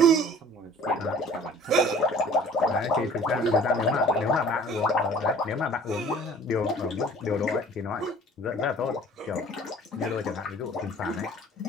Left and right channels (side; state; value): both; normal; correlation 0.49